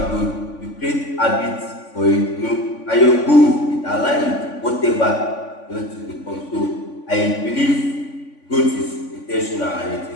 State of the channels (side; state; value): right; late; 3.5 ms